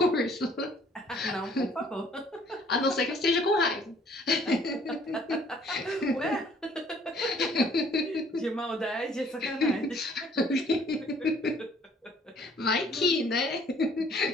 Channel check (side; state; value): both; normal; correlation 0.59